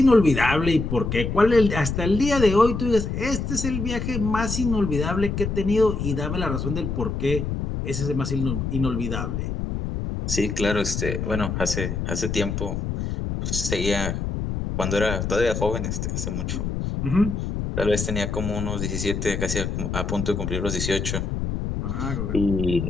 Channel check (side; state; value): left; noise; rumble, 3 dB below the sound